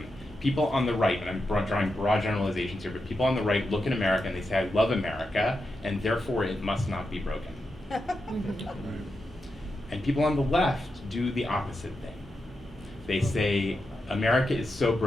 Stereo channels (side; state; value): both; normal; correlation 0.87